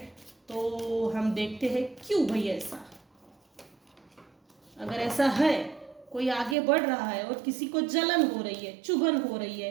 तो हम देखते हैं क्यों भाई ऐसा। अगर ऐसा है, कोई आगे बढ़ रहा है और किसी को जलन हो रही है, चुभन हो रही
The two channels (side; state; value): left; drops out; at 6.6 s